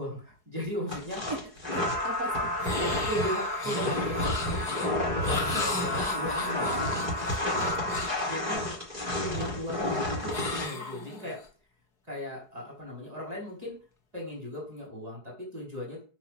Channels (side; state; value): left; late; 4.7 ms